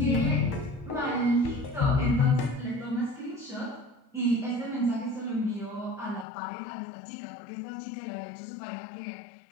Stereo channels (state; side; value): drops out; right; at 6.2 s